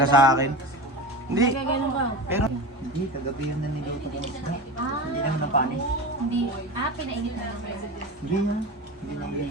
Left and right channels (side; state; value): both; normal; correlation 0.27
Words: sa akin. Hindi. Pero, Hindi, kagabi yun na niluto ko ng isda. Hindi naman na panis. Hindi. Pinainit na lang. Hindi na. Hindi na